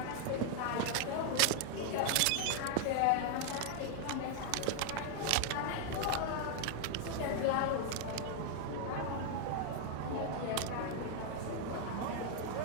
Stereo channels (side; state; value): both; different; correlation 0.00